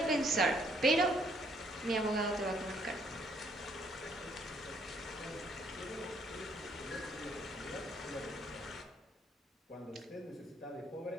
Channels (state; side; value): normal; both; correlation 0.67